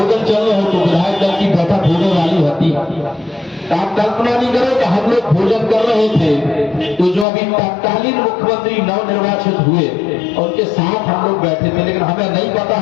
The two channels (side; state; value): right; drops out; at 7.2 s